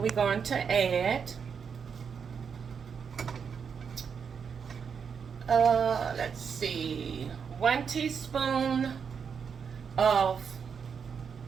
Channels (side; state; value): left; quieter; 6.5 dB